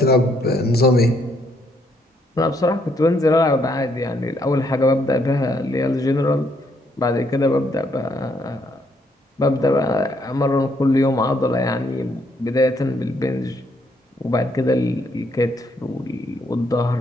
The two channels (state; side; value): normal; both; correlation 0.72